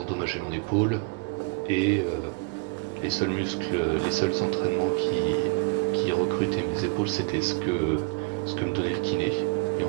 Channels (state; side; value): quieter; left; 30.7 dB